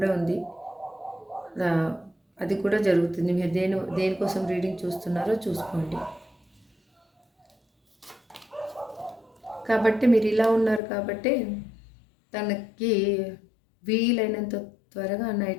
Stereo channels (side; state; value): right; drops out; at 10.8 s